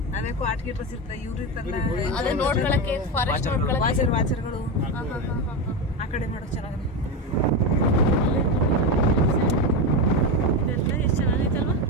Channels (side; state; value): both; normal; correlation 0.15